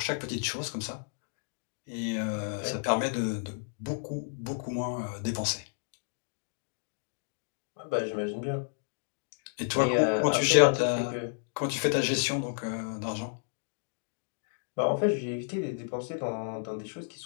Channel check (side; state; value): right; silent; digital silence